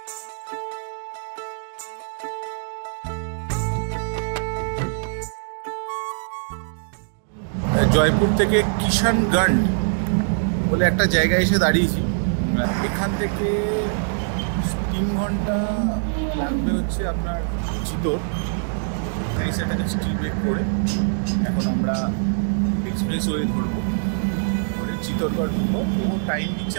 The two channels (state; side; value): silent; left; digital silence